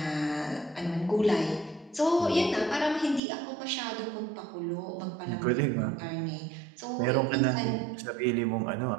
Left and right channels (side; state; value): left; drops out; at 3.2 s